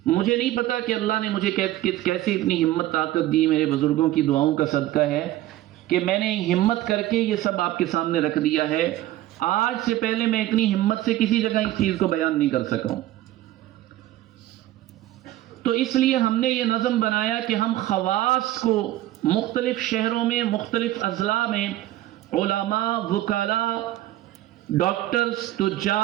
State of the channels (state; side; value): quieter; left; 15.0 dB